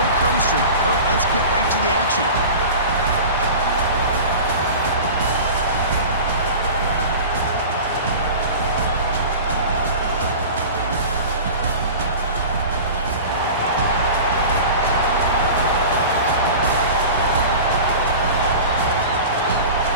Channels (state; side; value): inverted; both; correlation -0.35